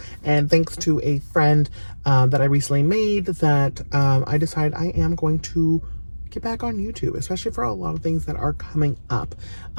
And thanks to a friend that I recently made, that I decided I am going to get back on YouTube, especially for a lot of things that are coming up,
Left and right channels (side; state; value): both; inverted; correlation -1.00